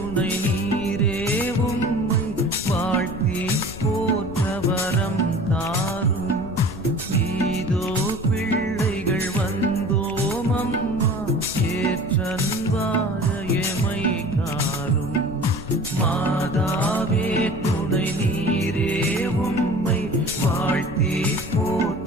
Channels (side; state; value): left; noise; rumble, 13 dB below the sound